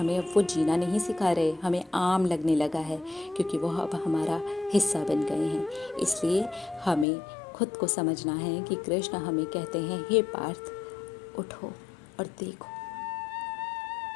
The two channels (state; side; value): drops out; right; at 7.1 s